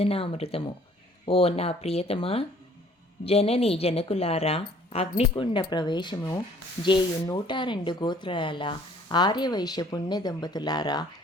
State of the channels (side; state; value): both; normal; correlation 0.57